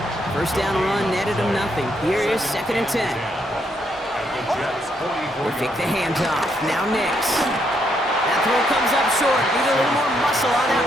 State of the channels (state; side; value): normal; both; correlation 0.75